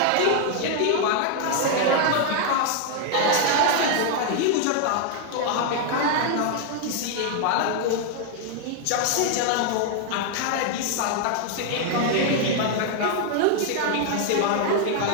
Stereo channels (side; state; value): both; different; correlation 0.00